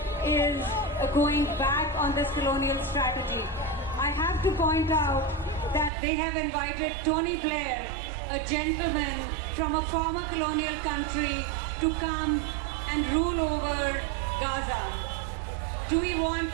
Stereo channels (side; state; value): left; drops out; at 5.9 s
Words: is going back on this colonial strategy. I have to point out that they have invited Tony Blair, a gentleman from a former colonial country, to come and rule over Gaza. Do we want